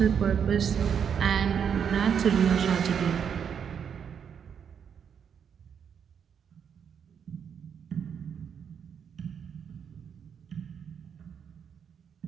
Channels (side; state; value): left; quieter; 7.6 dB